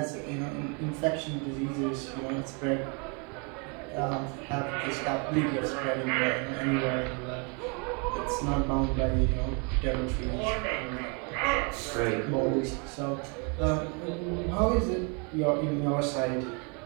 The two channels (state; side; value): quieter; left; 33.9 dB